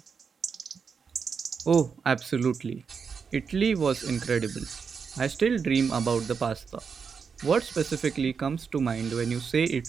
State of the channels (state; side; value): quieter; left; 5.9 dB